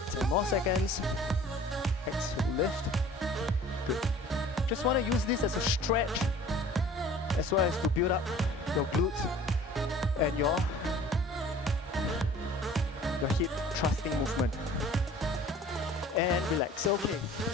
More seconds. Exhale, lift. Good. Just want to use this as a stretch as well as to build up your glutes and your hip thrusting movement. And relax. Okay,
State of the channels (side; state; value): both; normal; correlation 0.48